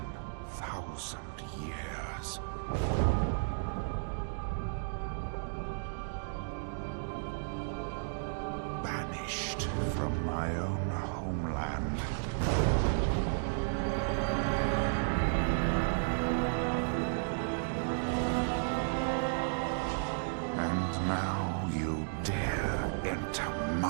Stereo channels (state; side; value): silent; left; digital silence